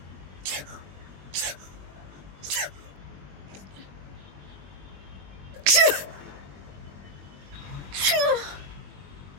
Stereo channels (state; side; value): late; left; 21 ms